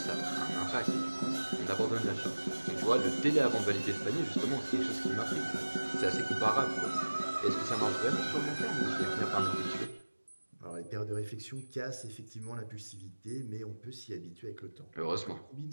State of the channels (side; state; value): both; inverted; correlation -1.00